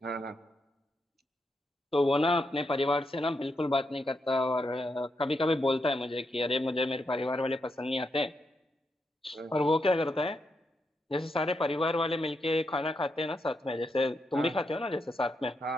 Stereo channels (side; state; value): both; normal; correlation 0.83